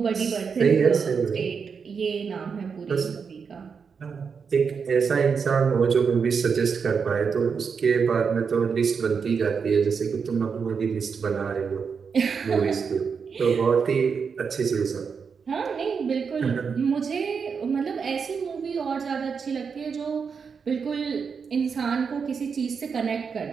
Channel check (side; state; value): left; quieter; 5.9 dB